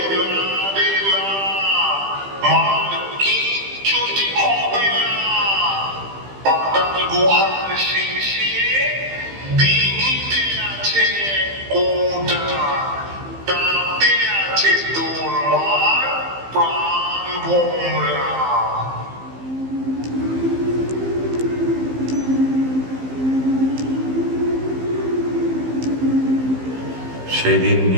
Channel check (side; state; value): left; late; 15 ms